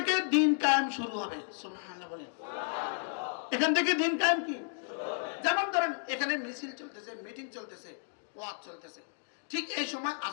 দিন কায়েম শুরু হবে। সুবহানাল্লাহ বলেন। এখান থেকে দিন কায়েম কি? যেমন ধরেন এখানে মিছিল চলতেছে, মিটিং চলতেছে, ওয়াজ চলতেছে, ঠিক এই সময়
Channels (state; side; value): silent; right; digital silence